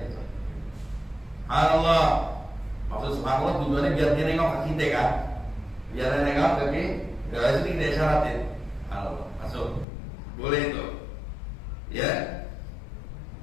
Subhanallah, maksud subhanallah tujuannya biar dia nengok ke kita kan, biar dia nengok ke kita, biar itu kita isyaratin. Subhanallah, masuk, boleh itu, ya.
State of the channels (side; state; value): right; drops out; at 9.9 s